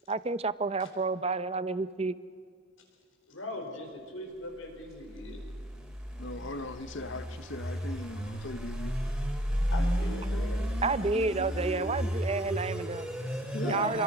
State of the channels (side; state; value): both; normal; correlation 0.49